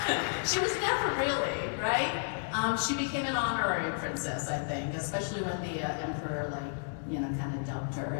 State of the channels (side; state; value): right; silent; 56 dB below the other